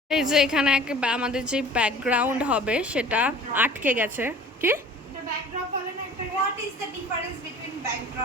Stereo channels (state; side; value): normal; both; correlation 0.46